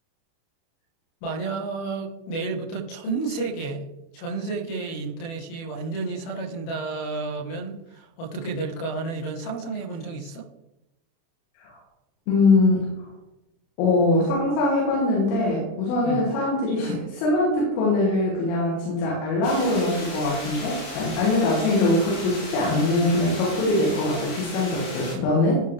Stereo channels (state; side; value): late; right; 30 ms